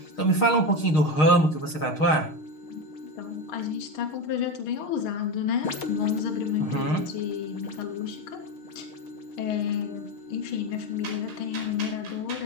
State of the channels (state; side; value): late; right; 6.5 ms